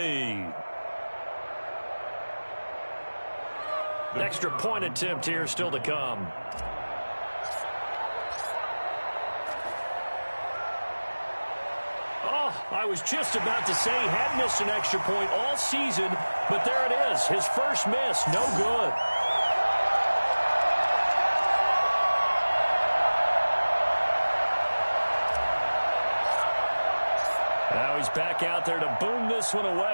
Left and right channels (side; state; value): both; inverted; correlation -1.00